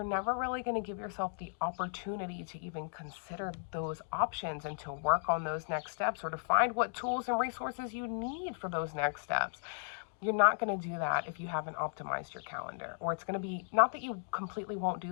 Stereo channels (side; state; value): right; silent; digital silence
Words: never really going to give yourself the opportunity to even consider those options and to work on those next steps, or to find what tools and resources you need for those next steps. You're not going to do that if you haven't optimized your calendar. Or it's going to be, not that you completely won't